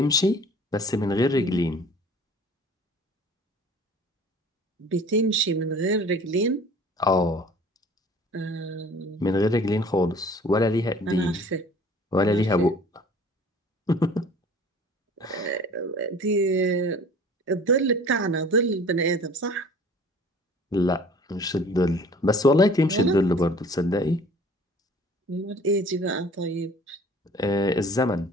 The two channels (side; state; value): both; normal; correlation 0.48